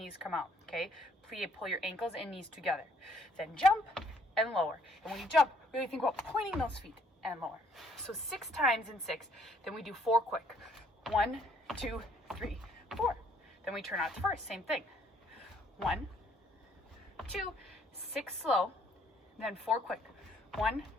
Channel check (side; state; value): both; normal; correlation 0.65